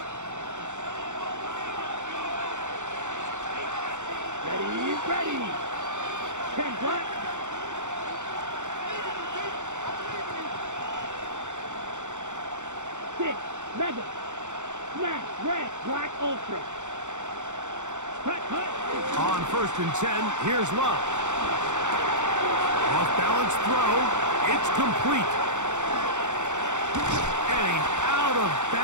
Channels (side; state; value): left; late; 0.85 ms